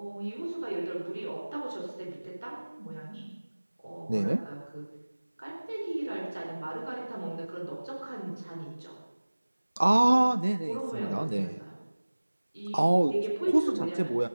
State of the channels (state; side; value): inverted; both; correlation -1.00